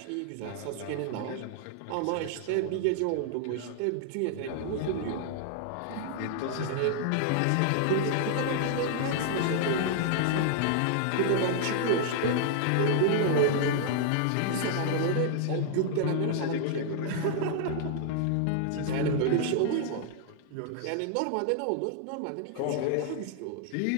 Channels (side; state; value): both; different; correlation -0.01